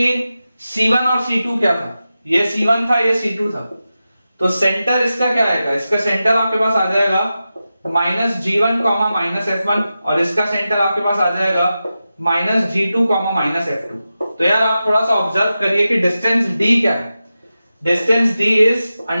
c1 और c2 क्या था, ये c1 था ये c2 था, तो सेंटर इसका क्या आएगा, इसका सेंटर आपके पास आ जाएगा minus g1 comma minus f1, और इसका सेंटर आपके पास आ जाएगा minus g2 comma minus f2। तो यार आप थोड़ा सा ऑब्जर्व करिए कि डिस्टेंस d क्या है, distance d is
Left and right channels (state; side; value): inverted; both; correlation -0.92